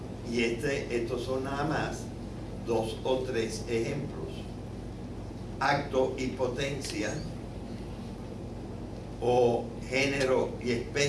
Y estos son nada más 2 o 3 ejemplos. Acto y potencia, o género y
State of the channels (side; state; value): both; identical; correlation 1.00